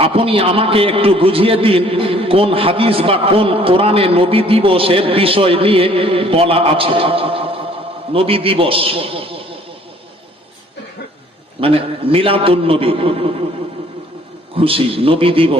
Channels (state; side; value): normal; both; correlation 0.57